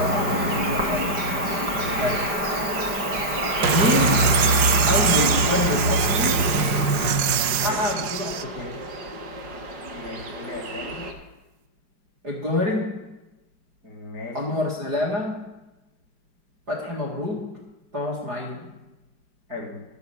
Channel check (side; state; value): left; late; 4.9 ms